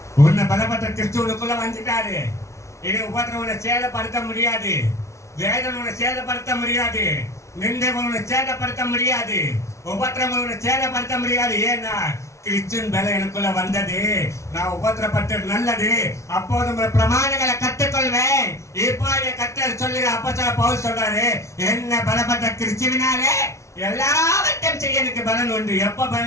உன்னை பலப்பட்ட கிறிஸ்துவுக்குள்ள வந்துட்டாரு. இனி உபத்திரம் உன்னை சேதப்படுத்த முடியாது, வேதனை உன்னை சேதப்படுத்த முடியாது, நிந்தைகள் உன்னை சேதப்படுத்த முடியாது, உபத்திரம் உன்னை சேதப்படுத்த முடியாது. ஏன்னா கிறிஸ்துவின் பலம் எனக்குள்ள வந்தது. நான் உபத்திரப்பட்டது நல்லது, அப்போது உங்கள் பிரமாணங்களை கற்றுக்கொள்வேன். இப்போ கர்த்தர் சொல்லுற அப்போஸ்தலர் பவுல் சொல்றாரு, என்ன பலப்பட்ட கிறிஸ்துவினாலே எல்லாவற்றையும் செய்ய எனக்கு பலன் உண்டு. எப்ப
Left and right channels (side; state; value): right; late; 0.14 ms